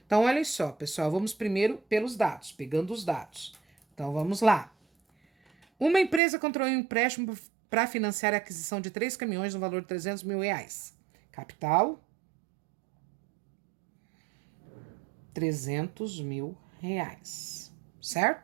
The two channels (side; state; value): left; drops out; at 6.2 s